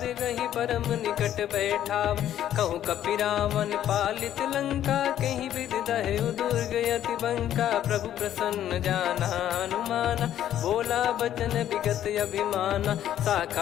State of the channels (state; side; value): quieter; right; 11.3 dB